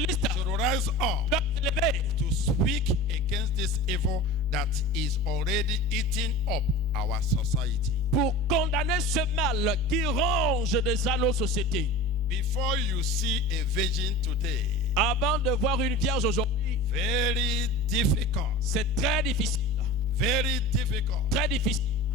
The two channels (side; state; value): both; normal; correlation 0.35